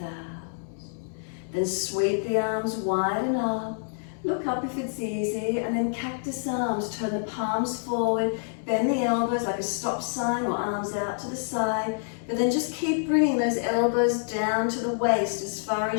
out. Then sweep the arms wide and up. Look up if it's easy, and then cactus arms. Turn the palms forward, bend the elbows like a stop sign or arms out to the side. But then just keep bringing those elbows down to the waist as far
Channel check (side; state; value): right; silent; digital silence